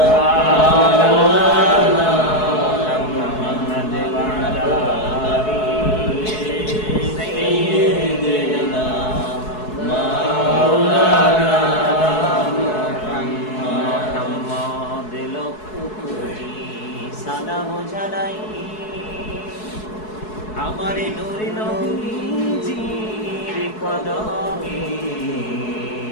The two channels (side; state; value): right; late; 4.7 ms